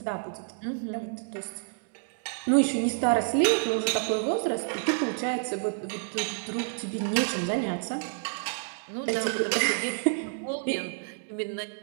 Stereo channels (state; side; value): silent; left; 59 dB below the other